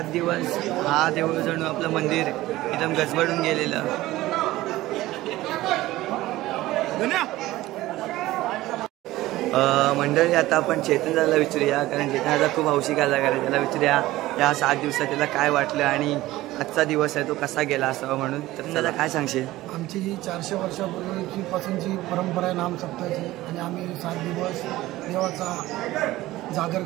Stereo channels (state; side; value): quieter; left; 17.0 dB